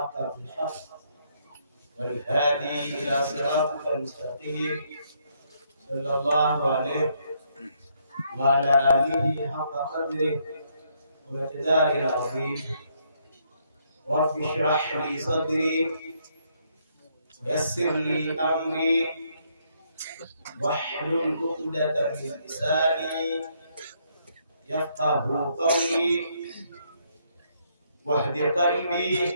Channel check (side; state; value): both; inverted; correlation -0.72